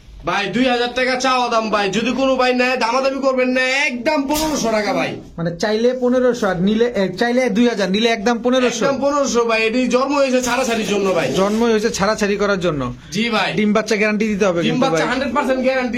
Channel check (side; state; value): both; identical; correlation 1.00